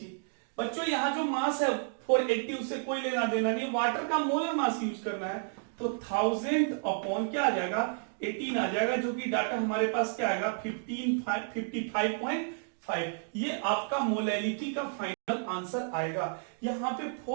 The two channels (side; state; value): left; silent; digital silence